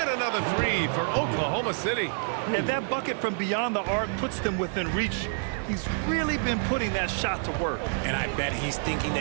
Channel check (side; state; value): left; silent; 57 dB below the other